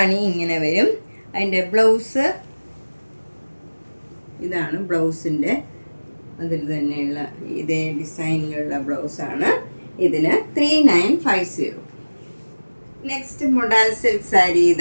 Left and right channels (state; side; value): inverted; both; correlation -1.00